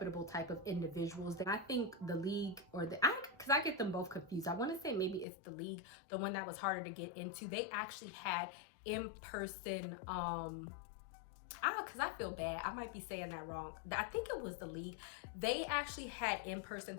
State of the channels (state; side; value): drops out; right; at 5.2 s